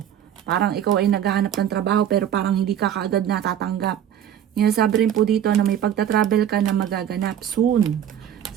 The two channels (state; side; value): quieter; left; 10.0 dB